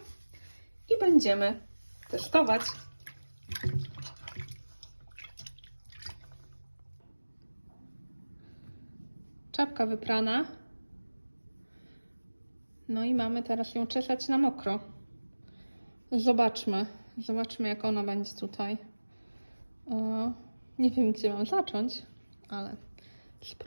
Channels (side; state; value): both; inverted; correlation -1.00